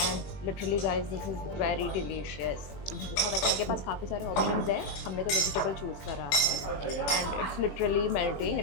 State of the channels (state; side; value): late; right; 21 ms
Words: And literally guys, this is very delicious. बहुत अच्छा, इनके पास काफ़ी सारे ऑप्शंस हैं। हमने तो वेजिटेबल चूज़ करा है and it's literally melting.